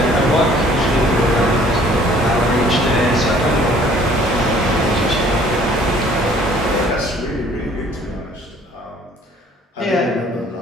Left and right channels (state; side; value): normal; both; correlation 0.56